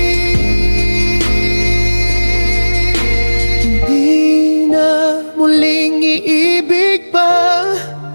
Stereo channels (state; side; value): inverted; both; correlation -1.00